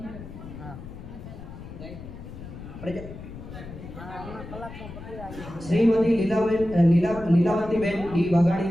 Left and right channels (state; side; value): noise; left; rumble, 12 dB below the sound